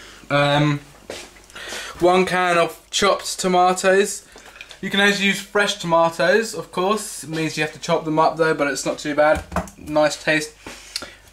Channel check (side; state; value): both; identical; correlation 1.00